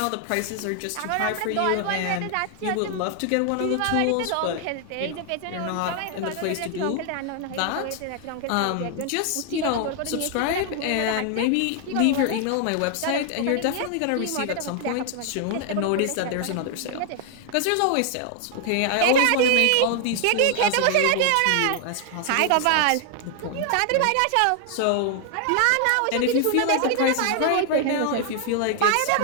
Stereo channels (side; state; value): both; different; correlation 0.00